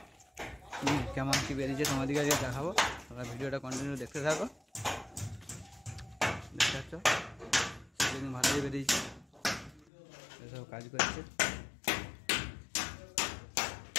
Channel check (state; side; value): drops out; right; at 9.9 s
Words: কেমন কী বেরিয়েছে তোমাদেরকে আজকে দেখাবো। তোমরা ভিডিওটা কন্টিনিউ দেখতে থাকো। দেখতে পাচ্ছ সিলিং ভালোই বেরিয়েছে, এসব কাজ করছে।